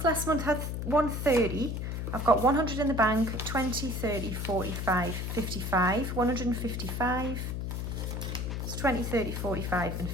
last month had 130. I've got 100 in the bank, 20, 30, 45, 55, 155. It's 20, 30, 45 and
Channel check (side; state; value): left; noise; hum, 3 dB below the sound